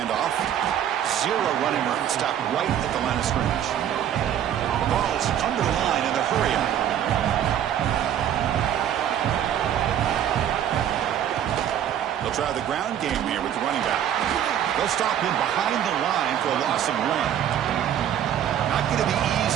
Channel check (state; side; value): quieter; left; 10.1 dB